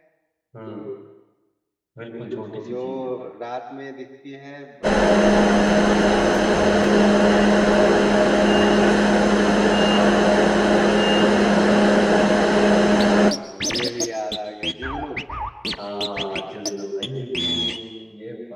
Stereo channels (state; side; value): identical; both; correlation 1.00